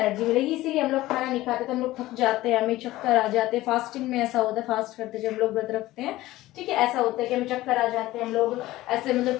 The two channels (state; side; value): quieter; right; 17.0 dB